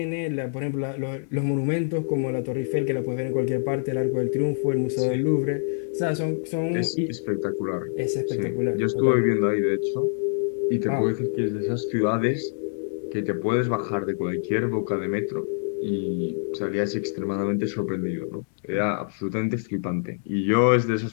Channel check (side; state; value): right; silent; digital silence